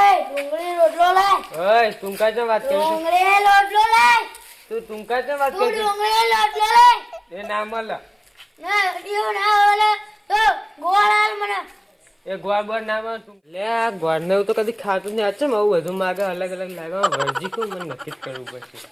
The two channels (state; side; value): identical; both; correlation 1.00